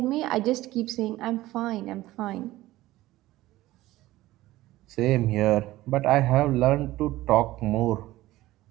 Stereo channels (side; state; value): left; quieter; 16.8 dB